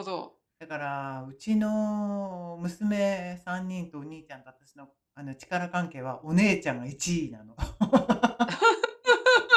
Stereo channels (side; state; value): both; identical; correlation 1.00